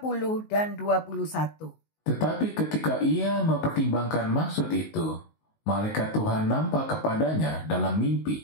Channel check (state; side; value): late; right; 19 ms